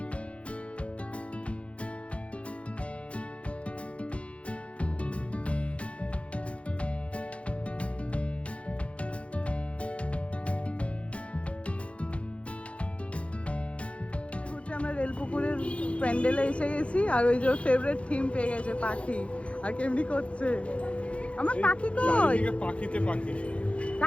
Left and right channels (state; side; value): late; right; 0.062 ms